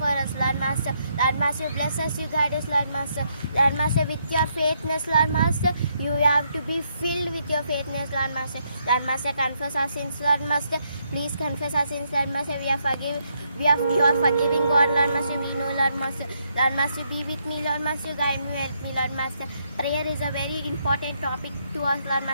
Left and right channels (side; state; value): both; inverted; correlation -0.75